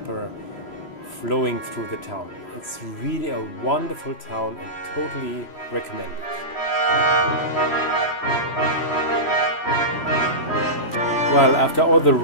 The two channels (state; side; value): late; right; 3.0 ms